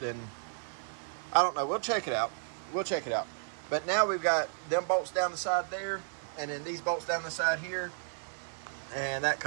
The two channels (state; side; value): silent; left; digital silence